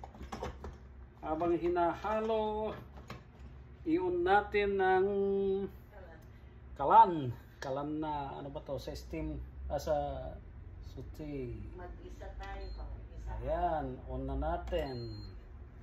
Habang hinahalo, iyon natin ng kalan. Kalan na ano ba to? Sa steam. Sa suti. Mag-isa tayo. Ayan, on na natin.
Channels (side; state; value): both; identical; correlation 1.00